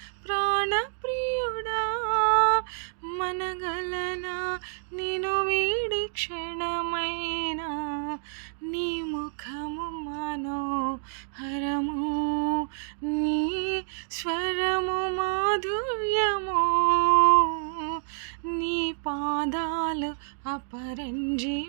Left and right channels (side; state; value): left; silent; digital silence